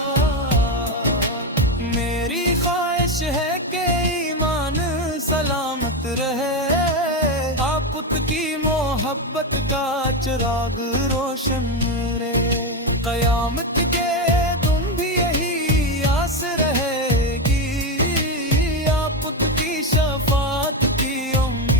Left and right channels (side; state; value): both; normal; correlation 0.12